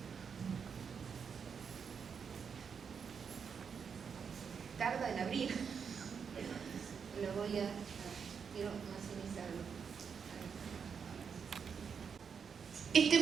Tarda en abrir. Lo voy a... quiero maximizarlo. Este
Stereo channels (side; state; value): left; quieter; 6.5 dB